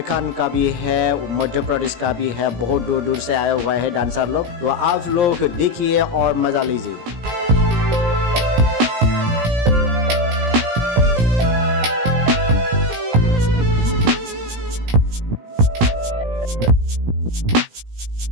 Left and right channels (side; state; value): left; late; 17 ms